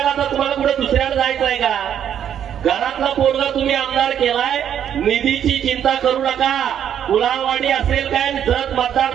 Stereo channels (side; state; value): left; quieter; 9.5 dB